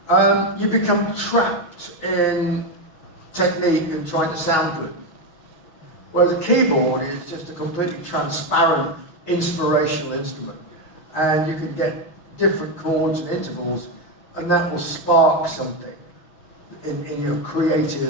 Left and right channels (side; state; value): right; late; 6.2 ms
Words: you become trapped in technique and trying to sound good. Whereas a keyboard is just a completely transparent, inspirational instrument. And you can get different chords and intervals, and that will spark something in your